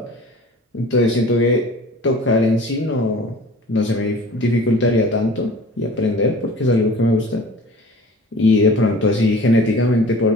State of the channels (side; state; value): both; normal; correlation 0.43